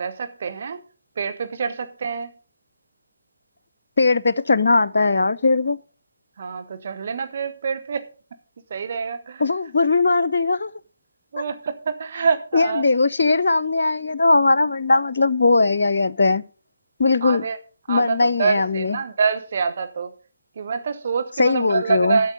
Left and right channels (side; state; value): both; inverted; correlation -0.84